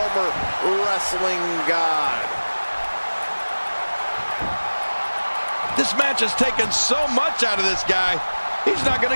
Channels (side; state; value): both; inverted; correlation -1.00